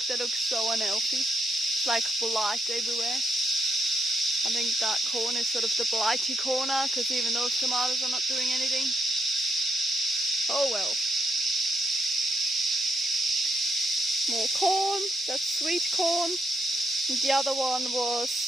they look so unhealthy. It's like blight everywhere. I think that corner is sort of the blighty corner, because even those tomatoes are not doing anything. Oh well. More corn, that's sweet corn. And the other one was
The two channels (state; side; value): normal; both; correlation 0.79